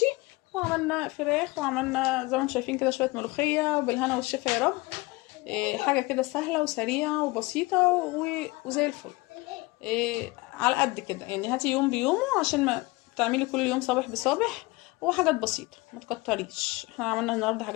وعملنا فراخ، وعملنا زي ما انتم شايفين كده شويه ملوخيه بالهنا والشفا يا رب. حاجه كده سهله وسريعه وبسيطه وزي الفل. على قد كده يعني. هاتي يوم بيومه عشان ما تعملي كل يوم صابح بصابح. وحاجات بسيطه ما تكتريش. احنا عملنا النهارده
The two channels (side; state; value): right; quieter; 23.3 dB